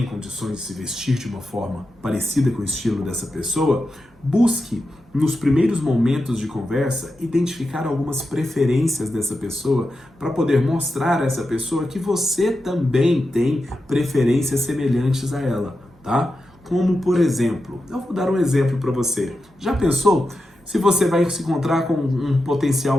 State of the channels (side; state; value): both; normal; correlation 0.90